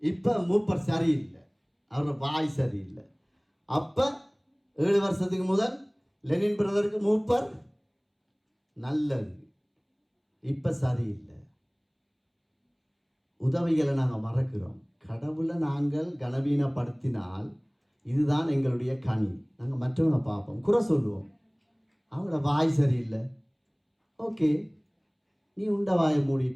இப்போ மூப்பர் சரியில்லை, அவரோட வாய் சரியில்லை. அப்போ 7 வருஷத்துக்கு முதல் லெனின் பிரதருக்கு மூப்பர் நல்லது, இப்போ சரியில்லை. உதவிகளை நாங்கள் மறக்கிறோம். கடவுளை நாங்கள் கனவீனப்படுத்தினால் இதுதான் எங்களுடைய கனி. நாங்கள் மற்றவனை பார்ப்போம், குறை சொல்லுவோம். அவங்களோட வாய் சரியில்லை, ஓகே, நீ உண்ட வாயை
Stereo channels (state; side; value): identical; both; correlation 1.00